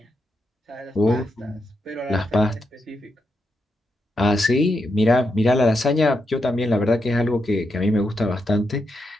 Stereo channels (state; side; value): normal; both; correlation 0.84